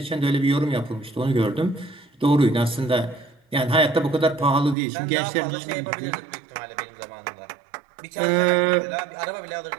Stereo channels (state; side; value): drops out; left; at 4.8 s